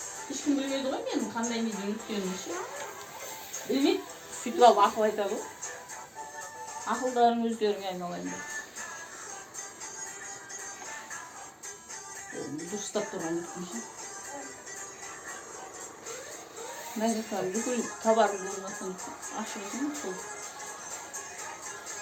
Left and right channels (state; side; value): identical; both; correlation 1.00